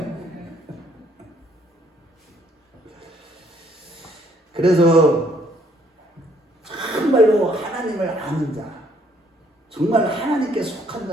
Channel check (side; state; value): both; normal; correlation 0.66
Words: 그래서 정말로 하나님을 아는 자, 정말 하나님께 속한